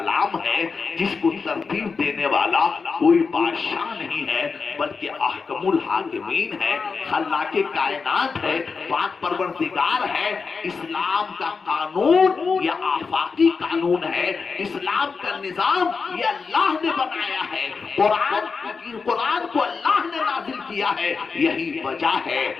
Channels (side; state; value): right; quieter; 4.9 dB